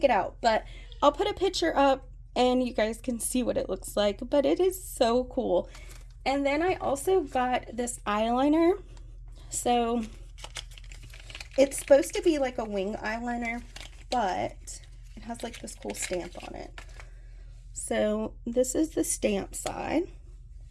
it out, but I'll put a picture up and you guys can see what it looks like. But it is so cool. And then I also got this eyeliner. So it's supposed to be like a wing eyeliner, but it has like this cool stamp on it. So this is the stamp side.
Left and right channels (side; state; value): both; identical; correlation 1.00